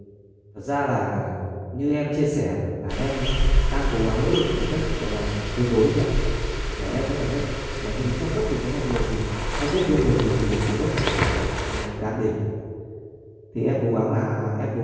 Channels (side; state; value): both; identical; correlation 1.00